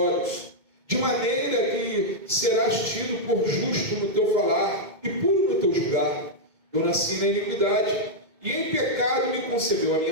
de maneira que serás tido por justo no teu falar e puro no teu julgar. Eu nasci na iniquidade, e em pecado me concebeu a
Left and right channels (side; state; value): left; late; 2.2 ms